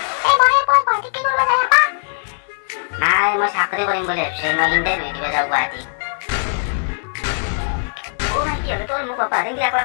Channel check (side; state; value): right; silent; 66 dB below the other